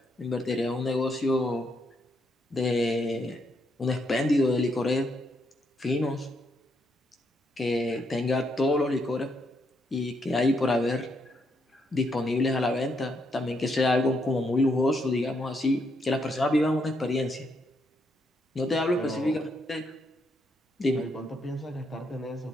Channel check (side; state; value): both; normal; correlation 0.77